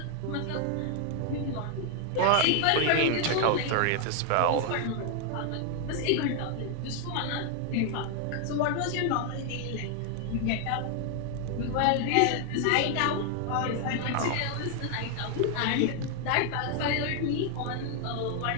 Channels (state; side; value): different; both; correlation 0.00